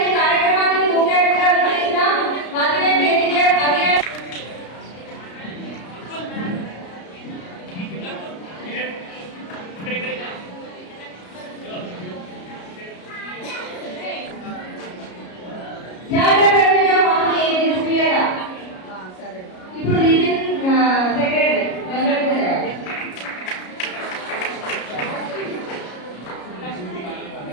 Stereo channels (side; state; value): right; late; 33 ms